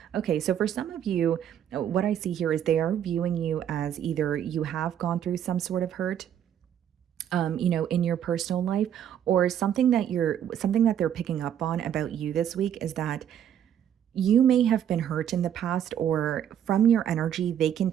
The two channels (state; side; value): quieter; left; 9.8 dB